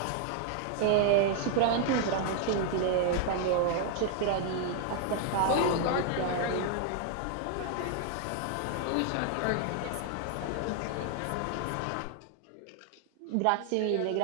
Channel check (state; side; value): different; both; correlation 0.00